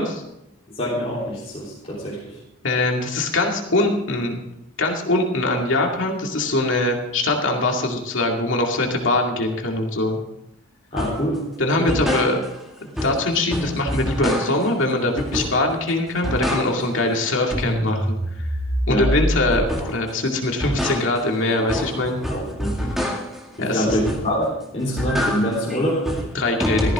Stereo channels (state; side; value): normal; both; correlation 0.34